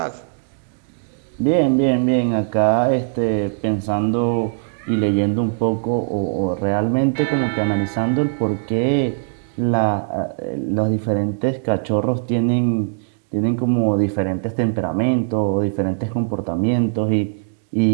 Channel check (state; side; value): silent; left; digital silence